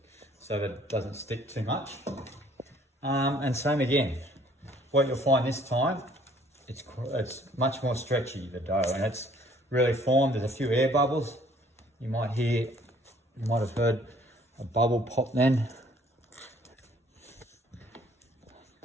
so that it doesn't stick too much. And same again. What you'll find this time, it's much more stretchy, the dough, and it's really formed. There's a few air bubbles. You might have heard a bubble pop then.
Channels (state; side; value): normal; both; correlation 0.59